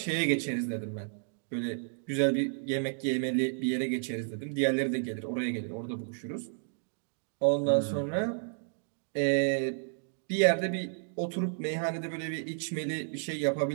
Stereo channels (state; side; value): silent; left; digital silence